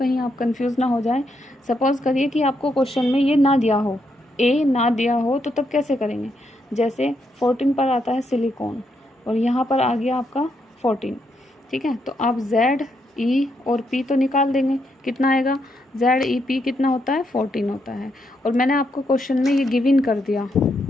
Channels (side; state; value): both; normal; correlation 0.79